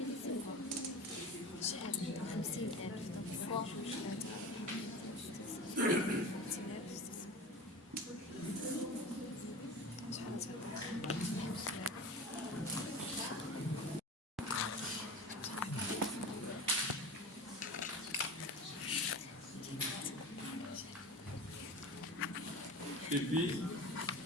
شحال 50,000 فوا شحال Et puis,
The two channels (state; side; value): normal; both; correlation 0.32